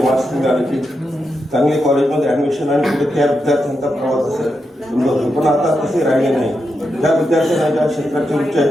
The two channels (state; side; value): normal; both; correlation 0.86